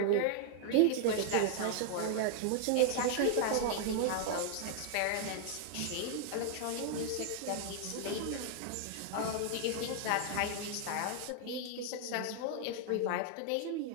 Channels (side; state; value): both; different; correlation 0.00